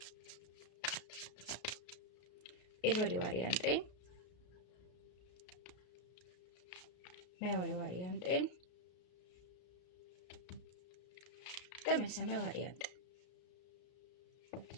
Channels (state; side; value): late; right; 33 ms